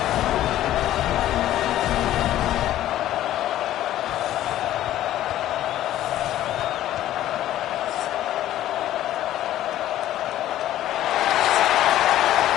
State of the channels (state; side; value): quieter; right; 13.2 dB